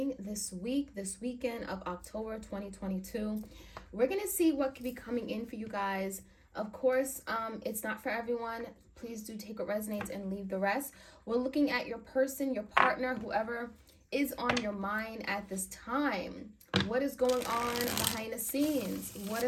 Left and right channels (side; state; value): both; identical; correlation 1.00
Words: this weekend of October 2022. We're going to see what could be coming in for you guys. Of course, it's not for everyone. Please do take what resonates and leave the rest. We're looking at your person, your partner, whoever is on your mind at this time. What is going on behind the scenes? What